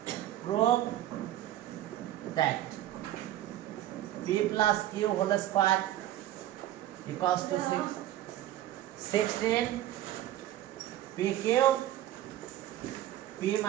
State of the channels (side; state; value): left; quieter; 13.3 dB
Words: p plus q whole square equals to 16 pq p